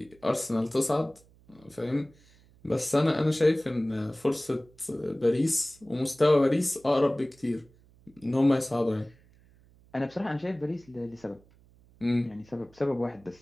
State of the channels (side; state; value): right; noise; hum, 28 dB below the sound